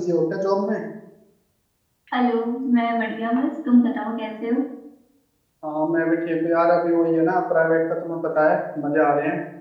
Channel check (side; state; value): both; identical; correlation 1.00